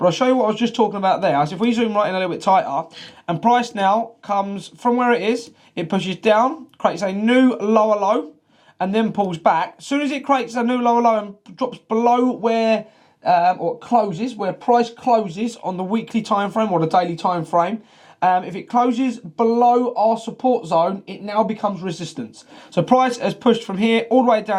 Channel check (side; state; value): both; identical; correlation 1.00